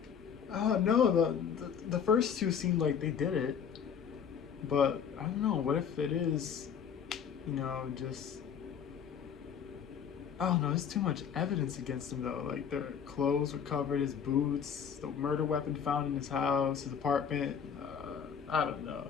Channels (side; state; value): right; quieter; 7.5 dB